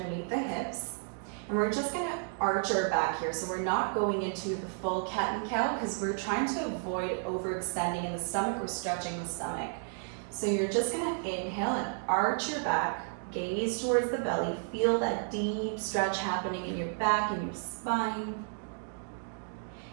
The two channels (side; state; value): left; silent; 56 dB below the other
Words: the hips. And we're just going to arch our back here. So we're not going into the full cat and cow because we're trying to avoid overextending in the stomach or stretching the stomach. So you're just going to inhale and arch your back, gaze towards the belly, feel that deep stretch happening in your back and your spine.